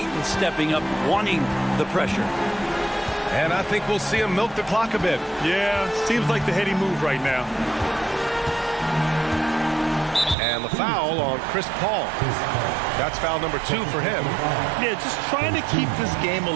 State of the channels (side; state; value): left; drops out; at 10.4 s